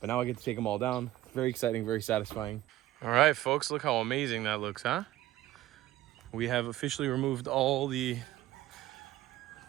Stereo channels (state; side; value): quieter; left; 15.3 dB